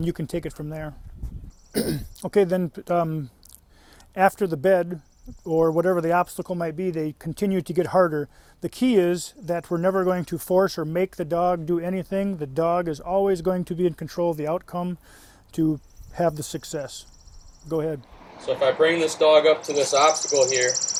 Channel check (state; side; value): identical; both; correlation 1.00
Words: you can take it from there. Okay, then after the bed, or whatever the obstacle might be, they continue to get harder. The key is that we're never going to force or make the dog do anything. The dog is always going to be in control of the outcome to have the success. Go ahead. So if I bring this dog up to this obstacle here,